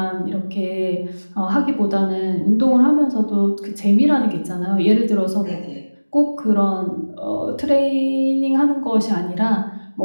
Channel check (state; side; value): inverted; both; correlation -1.00